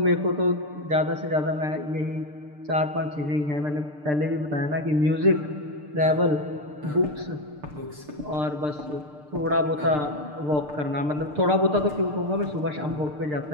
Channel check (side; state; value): left; late; 6.7 ms